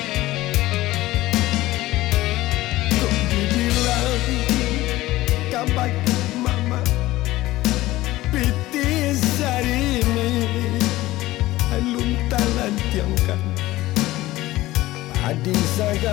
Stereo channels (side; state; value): right; quieter; 17.3 dB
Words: Kok dibilang kabak mama piti sarimi alung talan tiangkan adi